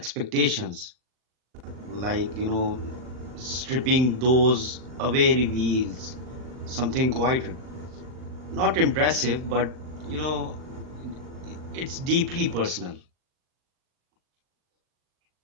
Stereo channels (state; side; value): late; left; 39 ms